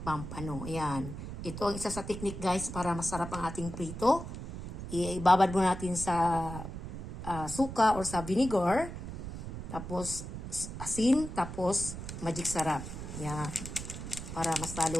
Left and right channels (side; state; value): right; noise; rumble, 8 dB below the sound